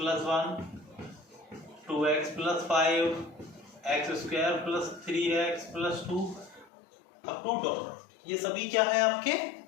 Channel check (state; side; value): drops out; right; at 6.7 s